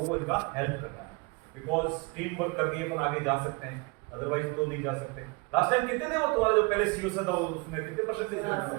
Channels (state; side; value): quieter; left; 28.6 dB